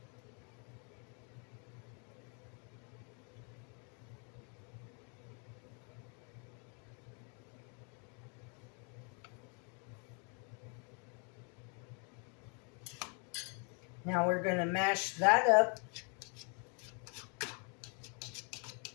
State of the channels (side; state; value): right; quieter; 37.2 dB